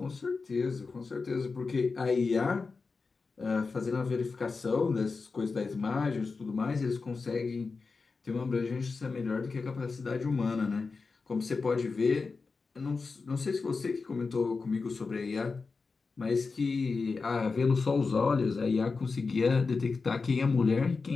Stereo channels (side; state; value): right; quieter; 4.4 dB